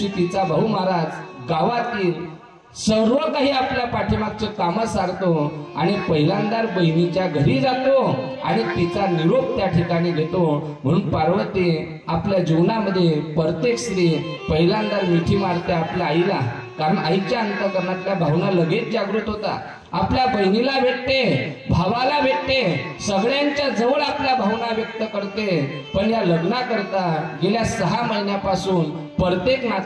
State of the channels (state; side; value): identical; both; correlation 1.00